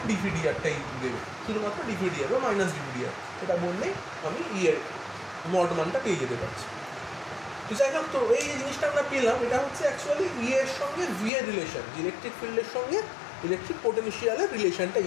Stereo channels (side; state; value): right; drops out; at 11.3 s